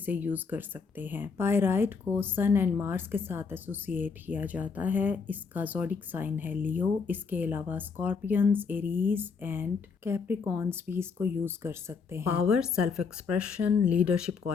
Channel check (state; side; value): quieter; right; 5.3 dB